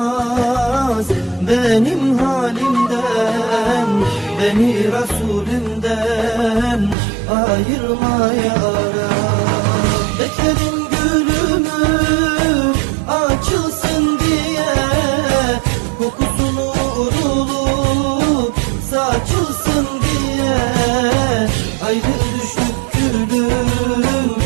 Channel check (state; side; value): drops out; left; at 7.0 s